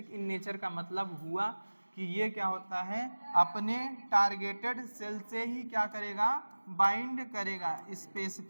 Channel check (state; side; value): inverted; both; correlation -1.00